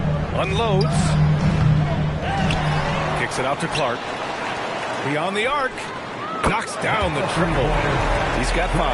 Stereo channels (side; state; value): both; identical; correlation 1.00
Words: Unloads. Kicks it out to Clark. Beyond the arc. Knocks down the triple. He's got 5.